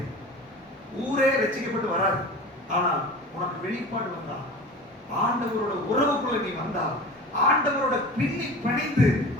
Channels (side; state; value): both; normal; correlation 0.36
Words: ஊரே ரட்சிக்கப்பட்டு வராது. ஆனால் உனக்கு வெளிப்பாடு வந்தா, ஆண்டவரோட உறவுக்குள்ள நீ வந்தா, ஆண்டவரோட பின்னி பிணைந்து